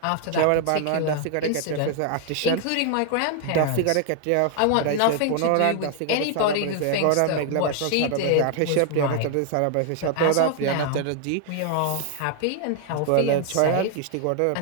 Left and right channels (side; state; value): both; different; correlation 0.00